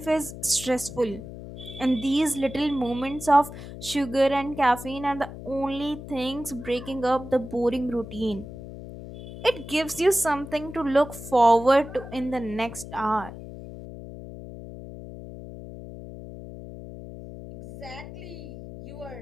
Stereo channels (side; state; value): left; noise; hum, 12 dB below the sound